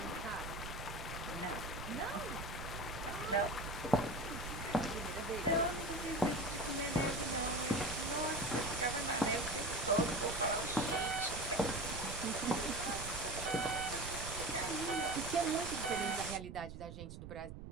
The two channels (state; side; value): noise; right; rumble, 11 dB below the sound